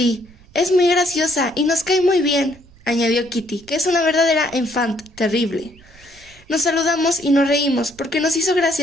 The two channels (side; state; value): right; noise; rumble, 25 dB below the sound